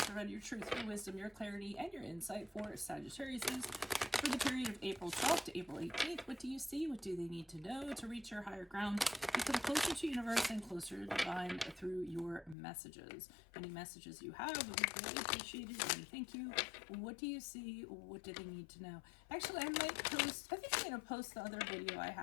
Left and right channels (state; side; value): drops out; right; at 12.6 s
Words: provide your truth, your wisdom, your clarity, and your insight for Sagittarius for the period of April 12th to April 18th? What do you see? What do they need to know to reach your higher ground? Become closer to universe and closer to divine through your messages. Any messages you have would be greatly appreciated. And thank you. What do you see? What do they need to know? Actually, I might post, I think I'm going to post the other video I